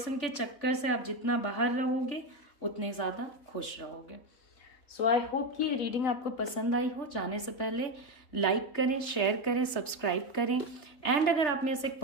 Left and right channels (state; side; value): late; right; 3.3 ms